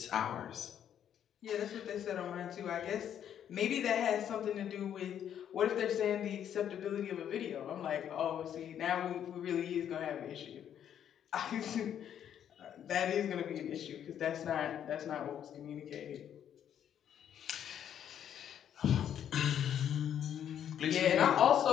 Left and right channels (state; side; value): quieter; right; 9.6 dB